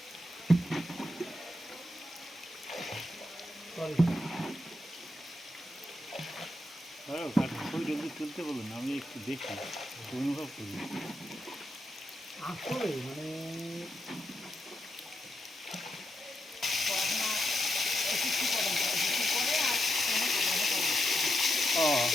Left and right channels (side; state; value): both; normal; correlation 0.84